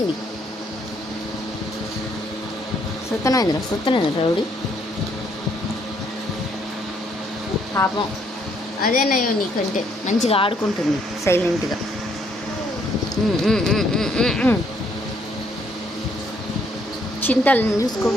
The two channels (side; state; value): both; normal; correlation 0.69